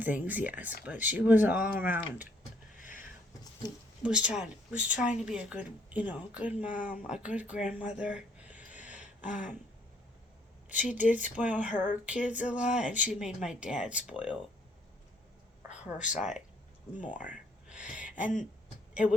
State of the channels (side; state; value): both; normal; correlation 0.65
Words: yes. But she was all around. Was trying to be a good, good mom, a good grandmother. Um, she did spoil her kids a lot, and she made my dad spoil her side more. And it